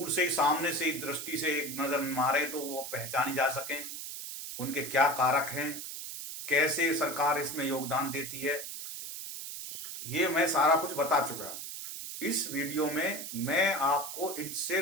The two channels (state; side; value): noise; right; hiss, 8 dB below the sound